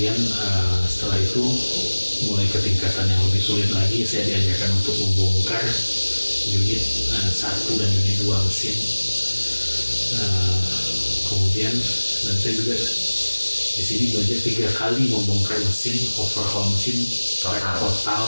setelah itu mulai ke tingkatan yang lebih sulit lagi, saya diajarkan untuk membongkar unit 1 dan unit 2 mesin. Kemudian dan saya juga di sini belajar 3 kali membongkar mesin, overhaul mesin total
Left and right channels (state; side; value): inverted; both; correlation -1.00